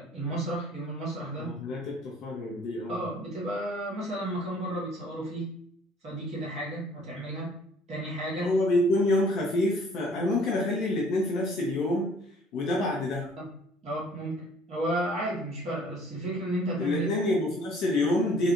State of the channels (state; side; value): normal; both; correlation 0.56